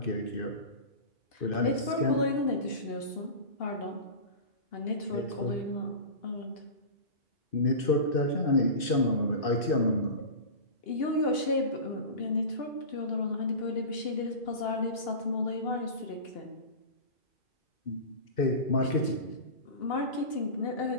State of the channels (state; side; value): late; right; 2.6 ms